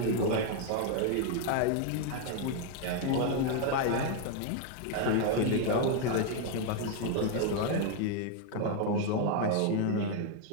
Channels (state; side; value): different; both; correlation 0.01